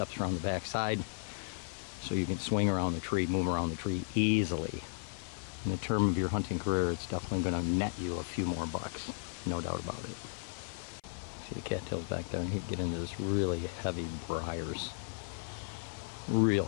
around the backside so you can swing around the tree, move around the tree easily. In the term of your hunting career, it's definitely going to net you a few more bucks, no doubt about it. See the cattails back there, and he'd get into this really heavy briars. Real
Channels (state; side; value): silent; right; 54 dB below the other